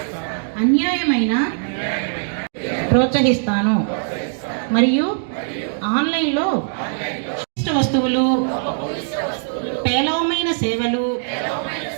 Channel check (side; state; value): left; silent; digital silence